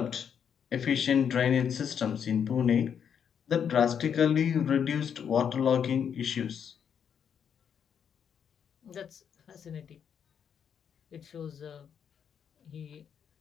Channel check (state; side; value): quieter; right; 7.8 dB